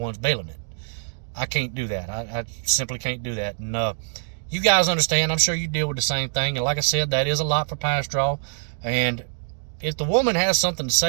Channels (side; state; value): left; silent; digital silence